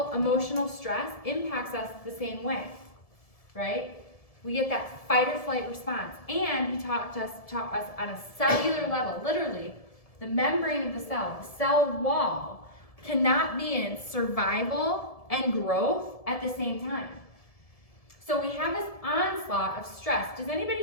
emotional stress impacts us the same way, right? We get that fight or flight response. And he taught us on a cellular level, literally, the membrane of the cell wall, cannot be in survival and growth at the same time. So we have this onslaught of stress. Does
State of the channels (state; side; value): late; right; 1.7 ms